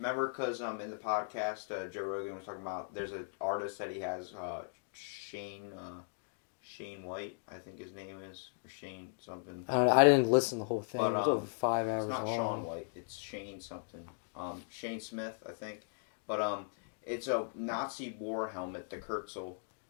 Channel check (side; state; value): right; silent; digital silence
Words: because in the podcast, Joe Rogan was talking about, there's an artist that he has, Shane White, I think his name is, or Shane something. I didn't listen to the whole thing. But, it was over 5 hours long. It's not Sean White, it's Shane something. Shane Smith, I think. But it's a Nazi war helmet, the Kurtzel,